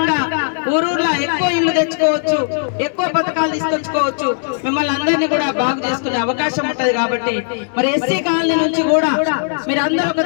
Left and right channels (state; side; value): silent; right; digital silence